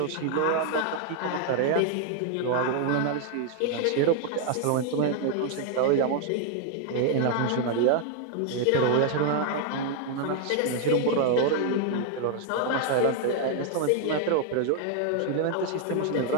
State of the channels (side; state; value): both; different; correlation 0.00